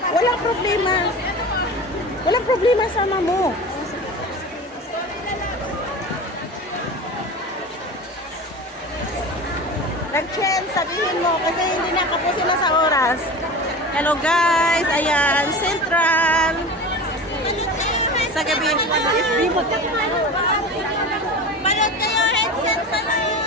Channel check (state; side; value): normal; both; correlation 0.31